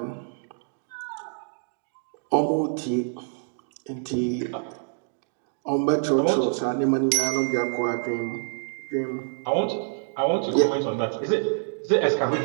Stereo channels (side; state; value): left; silent; digital silence